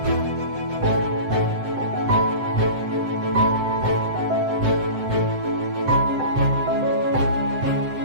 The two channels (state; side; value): late; left; 7.8 ms